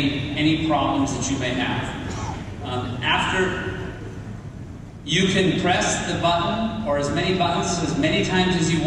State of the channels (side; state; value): both; identical; correlation 1.00